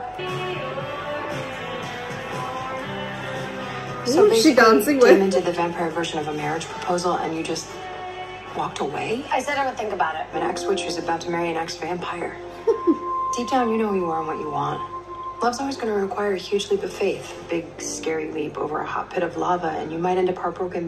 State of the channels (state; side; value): identical; both; correlation 1.00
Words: So Who's she dancing with? Damon did the vampire version of a marriage proposal and you just walked away? I said I would think about it. An ex-witch who's about to marry an ex-vampire. Deep down, you know who you are and what you want. Love's always going to require a huge leap of faith. A big, scary leap over a hot pit of lava, and you might end up heartbroken,